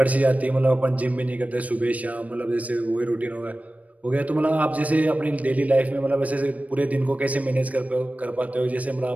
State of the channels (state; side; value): late; left; 0.070 ms